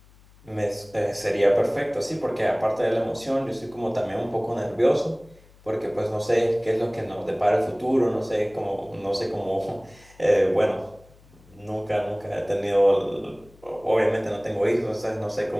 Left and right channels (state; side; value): noise; left; hum, 27 dB below the sound